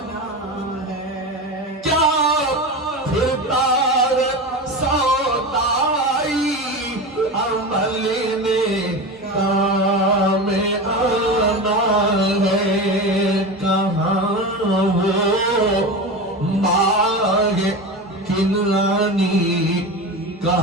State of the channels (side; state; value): both; normal; correlation 0.25